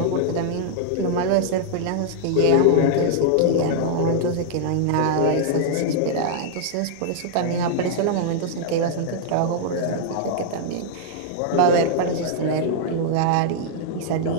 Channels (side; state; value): both; different; correlation -0.01